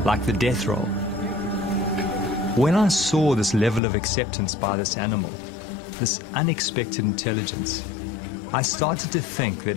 like the death roll. When I saw this level of acceptance by this animal, this unexpected intelligence, I started to think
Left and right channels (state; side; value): drops out; right; at 3.8 s